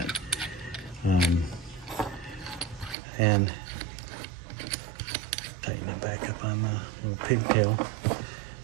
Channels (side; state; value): left; drops out; at 3.0 s